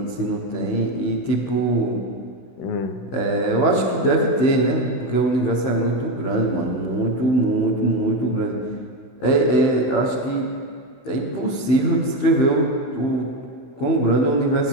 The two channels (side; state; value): right; late; 16 ms